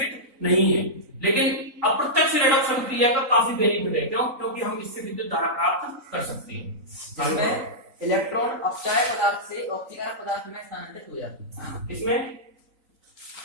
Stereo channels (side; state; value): left; late; 3.9 ms